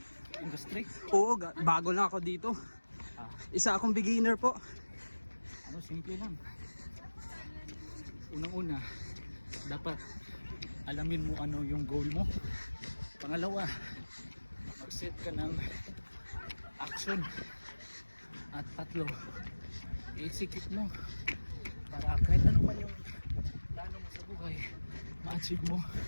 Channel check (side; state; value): both; inverted; correlation -1.00